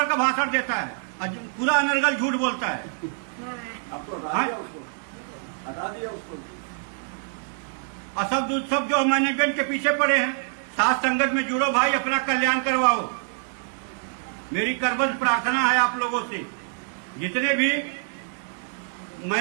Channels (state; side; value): silent; left; 61 dB below the other